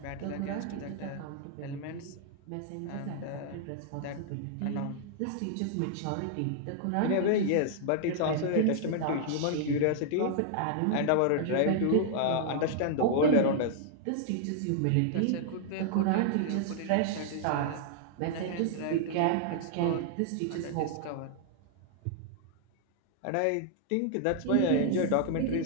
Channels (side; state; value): both; different; correlation -0.01